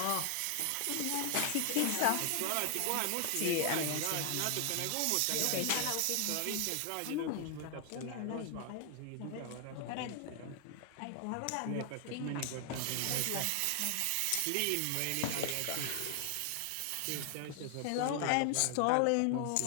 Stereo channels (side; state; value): both; different; correlation 0.00